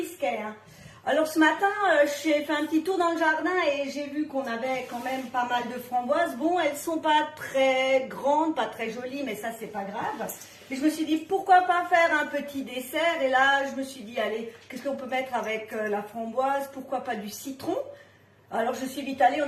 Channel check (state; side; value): identical; both; correlation 1.00